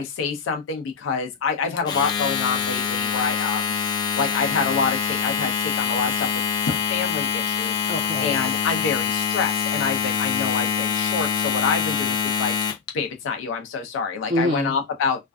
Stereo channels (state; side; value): quieter; right; 5.8 dB